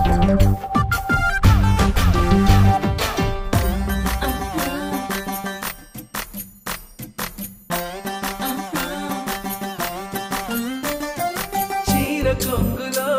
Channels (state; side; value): identical; both; correlation 1.00